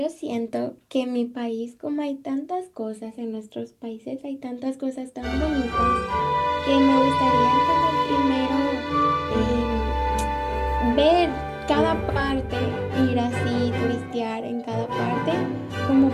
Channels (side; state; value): both; identical; correlation 1.00